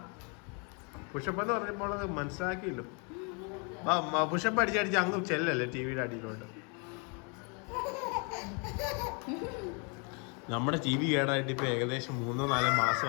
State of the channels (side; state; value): right; quieter; 35.2 dB